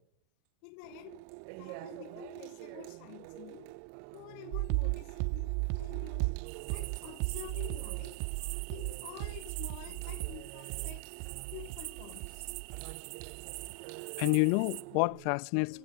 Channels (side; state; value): both; different; correlation 0.00